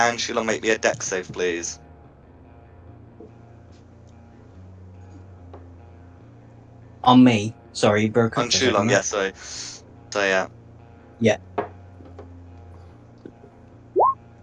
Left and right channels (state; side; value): identical; both; correlation 1.00